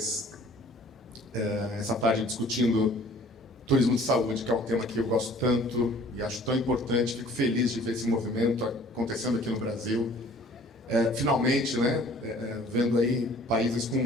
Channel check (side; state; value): both; normal; correlation 0.52